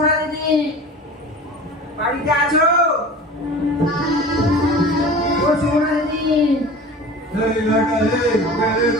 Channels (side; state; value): both; normal; correlation 0.38